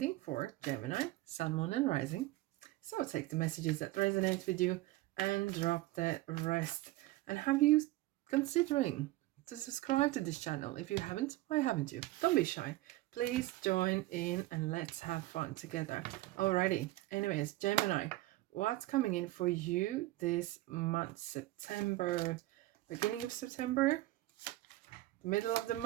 for Gemini, Sun, Moon, and Rising. So take the messages that resonate with you and drop the rest. And have you considering to subscribe to this channel? If you haven't, why haven't you? Don't be shy. Please join in and let's have fun together. Alrighty. Anyways, Gemini, what's coming in for you this month? September, beginning of September, middle of the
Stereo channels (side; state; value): left; quieter; 17.8 dB